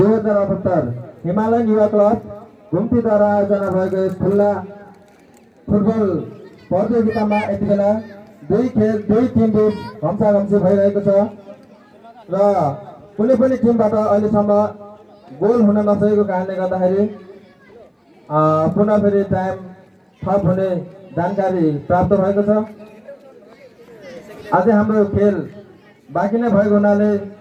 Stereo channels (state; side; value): identical; both; correlation 1.00